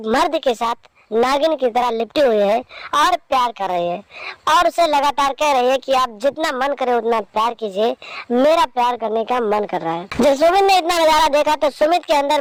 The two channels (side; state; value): both; identical; correlation 1.00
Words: मर्द के साथ नागिन की तरह लिपटी हुई है और प्यार कर रही है और उसे लगातार कह रही है कि आप जितना मन करे उतना प्यार कीजिए, मेरा प्यार करने का मन कर रहा है। जब सुमित ने इतना नजारा देखा तो सुमित के अंदर